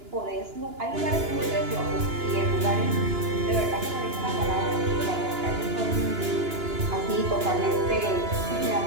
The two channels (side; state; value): left; late; 2.9 ms